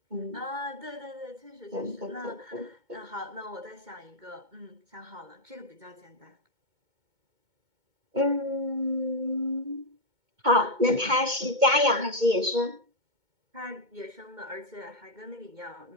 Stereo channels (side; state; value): left; late; 2.2 ms